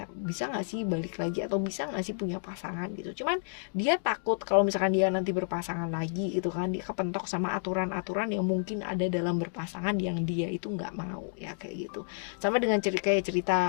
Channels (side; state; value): right; silent; digital silence